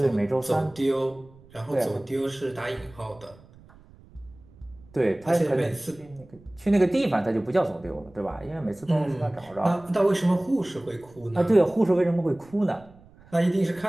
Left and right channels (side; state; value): right; noise; rumble, 25 dB below the sound